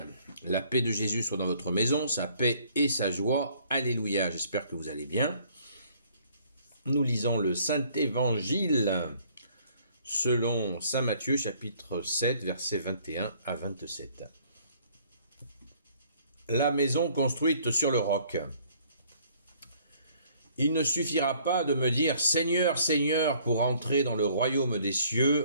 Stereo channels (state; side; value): inverted; both; correlation -0.60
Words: La paix de Jésus soit dans votre maison, sa paix et sa joie. Alléluia. J'espère que vous allez bien. Nous lisons le Saint-Évangile selon Saint Matthieu, chapitre 7, versets 21 à 27. La maison construite sur le roc. Il ne suffira pas de me dire « Seigneur, Seigneur » pour entrer dans le royaume des